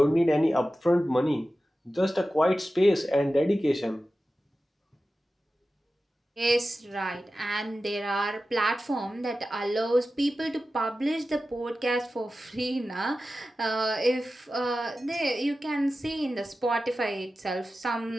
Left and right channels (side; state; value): both; normal; correlation 0.94